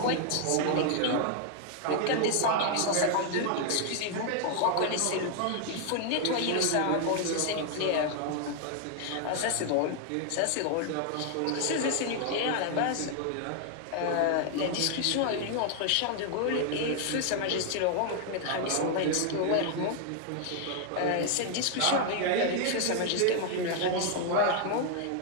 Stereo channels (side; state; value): both; different; correlation 0.00